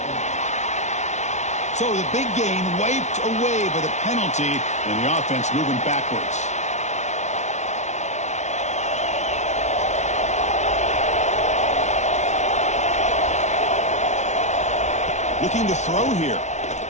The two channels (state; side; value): late; right; 0.33 ms